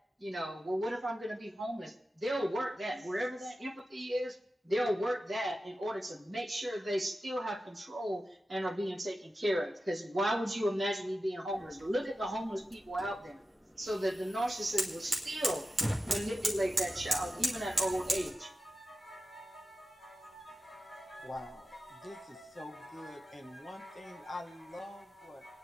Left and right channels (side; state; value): both; normal; correlation 0.93